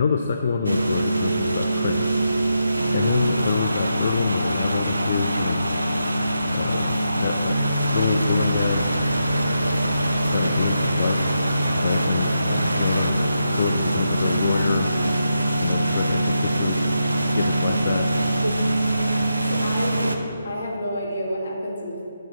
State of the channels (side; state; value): both; inverted; correlation -0.84